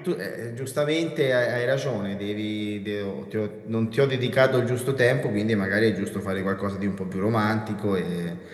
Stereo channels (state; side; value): identical; both; correlation 1.00